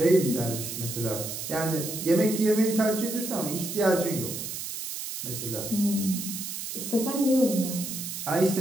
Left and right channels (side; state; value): right; noise; hiss, 6 dB below the sound